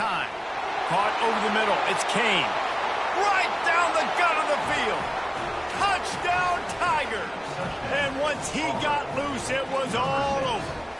Caught over the middle. It's Kane. Right down the gut of the field. Touchdown Tigers. And once he got loose, it was all over.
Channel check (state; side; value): identical; both; correlation 1.00